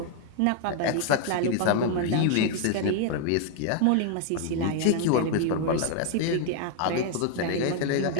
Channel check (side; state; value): both; different; correlation 0.00